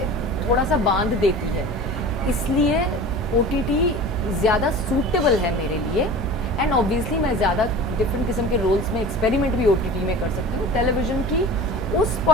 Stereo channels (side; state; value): both; normal; correlation 0.37